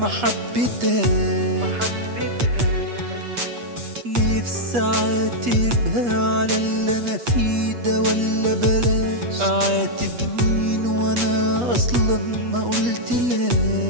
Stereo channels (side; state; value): left; late; 8.3 ms